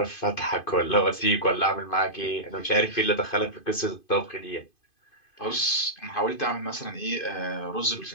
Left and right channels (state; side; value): late; right; 2.5 ms